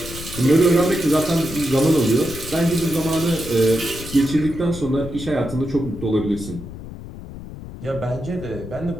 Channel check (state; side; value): noise; left; rumble, 12 dB below the sound